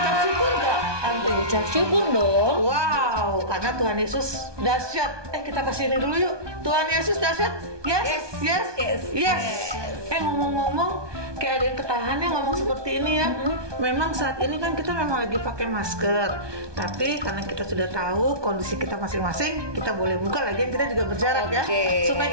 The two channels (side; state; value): left; late; 1.2 ms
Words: syukur gak Aunty? Ucap syukur dong. Wow, karena Tuhan Yesus dahsyat. Kita kasih ini dulu yuk. Tuhan Yesus dahsyat. Yes. Ngomong-ngomong, kayak ada yang ketahan ya ngomong seperti ini ya. Memang saat ini kan kita memang lagi pakai masker, tapi karena kita sudah tahu kondisi kita masing-masing, kita boleh buka lagi, kita juga berjarak ya,